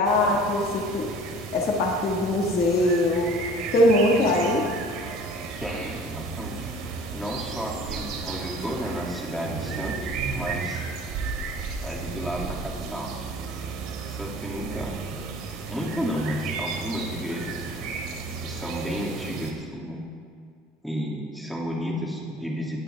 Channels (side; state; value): both; normal; correlation 0.47